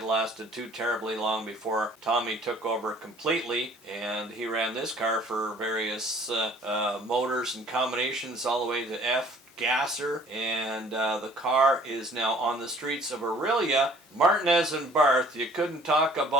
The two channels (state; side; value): normal; both; correlation 0.54